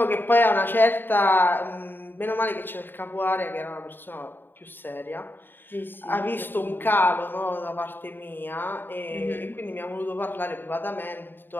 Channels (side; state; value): right; late; 0.095 ms